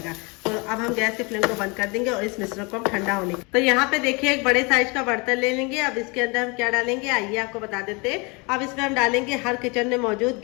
तो अब हम गैस के फ्लेम को बंद कर देंगे और इस मिश्रण को हम ठंडा होने। तो यहाँ पे देखिए एक बड़े साइज का बर्तन ले लेंगे। अब इसके अंदर हम क्या डालेंगे, आइए आपको बता देते हैं। अब इसमें हम डालेंगे हर किचन में मौजूद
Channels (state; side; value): quieter; right; 29.1 dB